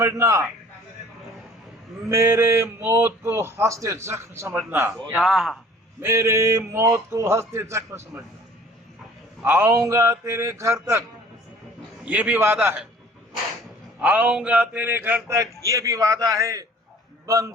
मेरे मौत को हंसते जख्म समझना, मेरे मौत को हंसते जख्म समझना. आऊंगा तेरे घर तक ये भी वादा है, आऊंगा तेरे घर तक ये भी वादा है.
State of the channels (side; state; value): both; normal; correlation 0.51